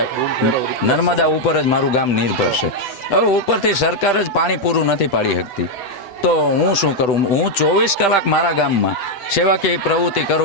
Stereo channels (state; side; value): late; right; 8.0 ms